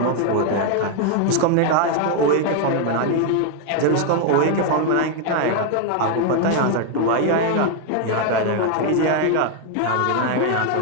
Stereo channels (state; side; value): different; both; correlation 0.01